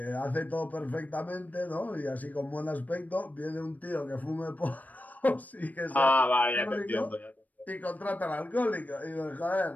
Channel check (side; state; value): right; late; 0.078 ms